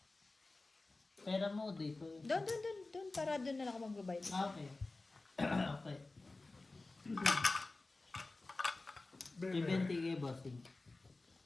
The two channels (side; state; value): right; quieter; 3.3 dB